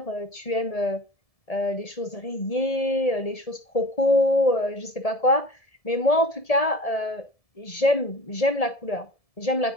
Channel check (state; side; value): late; right; 1.7 ms